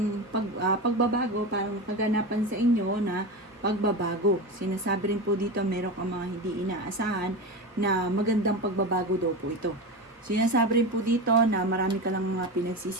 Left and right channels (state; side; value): normal; both; correlation 0.23